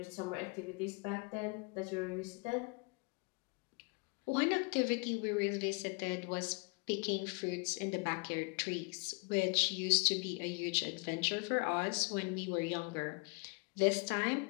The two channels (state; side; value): quieter; right; 32.0 dB